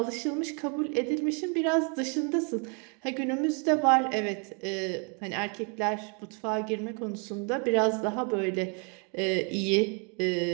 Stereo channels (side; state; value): left; quieter; 36.6 dB